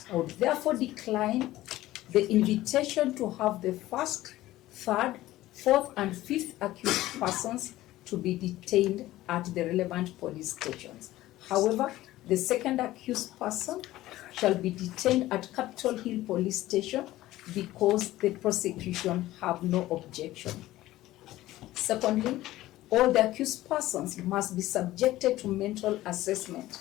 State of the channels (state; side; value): quieter; right; 16.0 dB